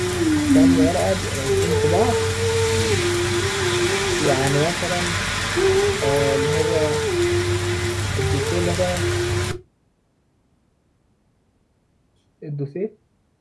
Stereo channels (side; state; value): both; identical; correlation 1.00